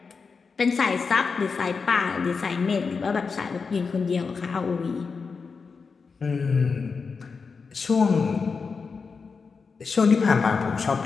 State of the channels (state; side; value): quieter; right; 5.0 dB